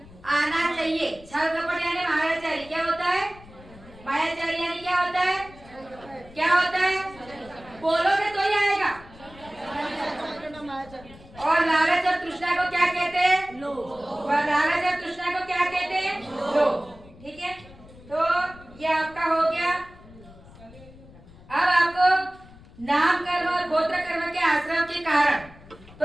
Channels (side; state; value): left; noise; rumble, 21 dB below the sound